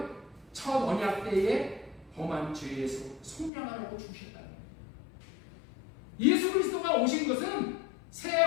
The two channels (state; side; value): drops out; right; at 3.5 s